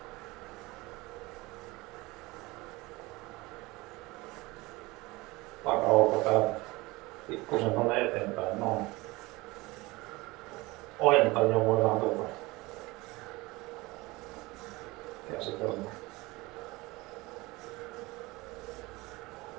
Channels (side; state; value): left; quieter; 22.1 dB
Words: takaolkapäätä. Pikkusen tonne eteenpäin. Noin. Ojentaja voidaan tuolta käsitellä.